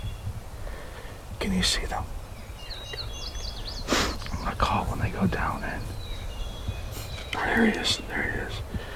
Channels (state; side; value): identical; both; correlation 1.00